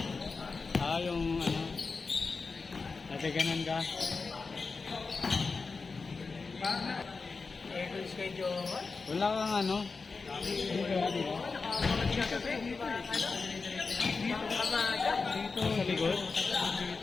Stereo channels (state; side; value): quieter; right; 4.4 dB